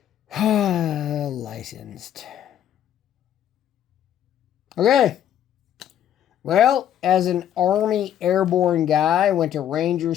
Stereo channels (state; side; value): quieter; right; 10.4 dB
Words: licensed. Okay. Well, as an Army airborne guy, went to Ranger